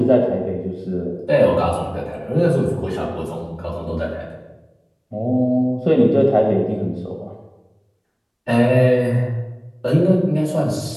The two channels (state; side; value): identical; both; correlation 1.00